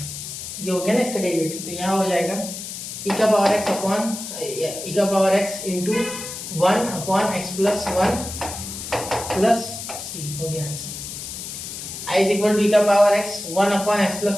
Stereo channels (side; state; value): left; noise; hiss, 8 dB below the sound